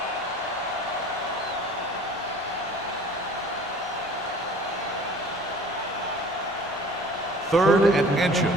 Third and inches.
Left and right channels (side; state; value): both; normal; correlation 0.46